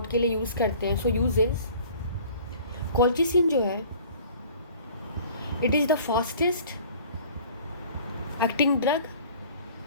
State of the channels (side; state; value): both; inverted; correlation -0.49